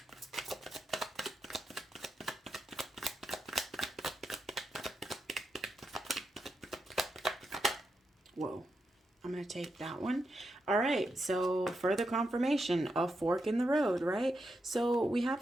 Whoa. I'm going to take that one. All right, so further confirmation of fork in the road, right? So we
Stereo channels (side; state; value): both; normal; correlation 0.85